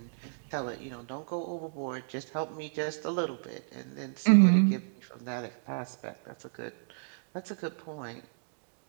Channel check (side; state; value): left; silent; digital silence